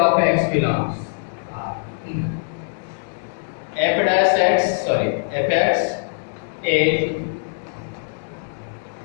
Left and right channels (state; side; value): silent; right; digital silence